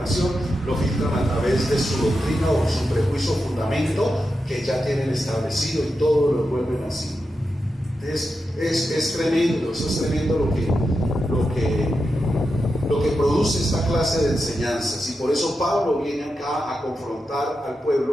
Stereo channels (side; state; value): both; normal; correlation 0.88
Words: lo filtran a través de su doctrina o su prejuicio o fundamento que ya tienen establecido, y todo lo vuelven así. Entonces, es tremendo, eso es tremendo lo que produce esta clase de enseñanzas. Y por eso Pablo viene acá a confrontar al